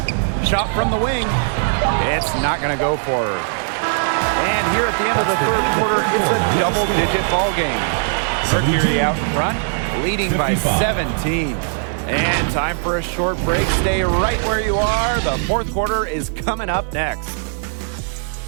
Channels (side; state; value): left; silent; digital silence